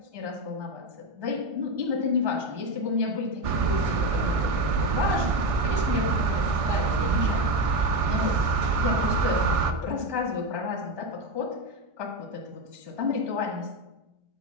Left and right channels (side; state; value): left; late; 1.6 ms